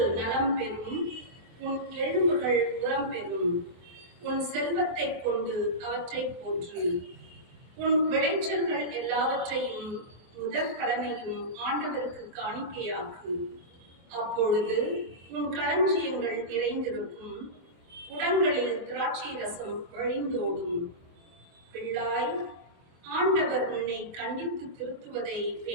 நலம் பெறும், உன் எலும்புகள் உரம் பெறும். உன் செல்வத்தை கொண்டு அவற்றை போற்று. உன் விளைச்சல்கள் எல்லாவற்றையும் முதற்கடனையும் ஆண்டவருக்கு காணிக்கையாக்கு. அப்பொழுது உன் களஞ்சியங்கள் நிறைந்திருக்கும், குடங்களில் திராட்சை ரசம் வழிந்தோடும். பிள்ளாய், ஆண்டவர் உன்னை கண்டித்து திருத்துவதை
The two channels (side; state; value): left; late; 24 ms